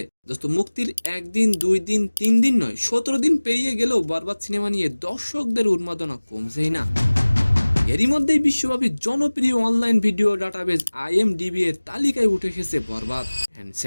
দোস্ত, মুক্তির একদিন, 2 দিন, 3 দিন নয়, 17 দিন পেরিয়ে গেলেও বরবাদ সিনেমা নিয়ে দর্শকদের উন্মাদনা কমছেই না। এরই মধ্যেই বিশ্বব্যাপী জনপ্রিয় অনলাইন ভিডিও ডাটাবেজ IMDb এর তালিকায় উঠে এসেছে বরবাদ। এন্ড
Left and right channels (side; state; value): both; inverted; correlation -1.00